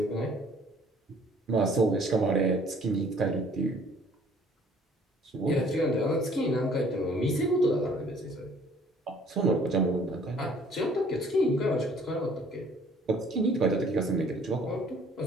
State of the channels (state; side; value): normal; both; correlation 0.57